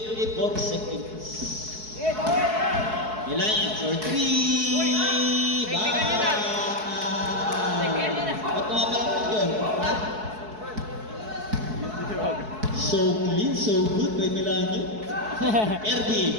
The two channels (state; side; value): late; left; 4.7 ms